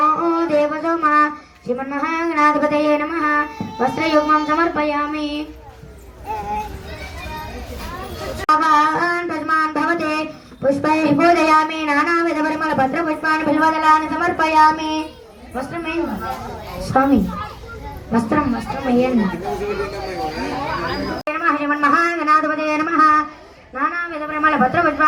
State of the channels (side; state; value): both; identical; correlation 1.00